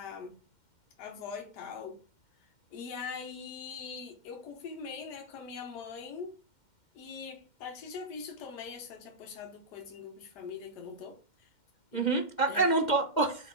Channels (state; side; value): late; right; 2.1 ms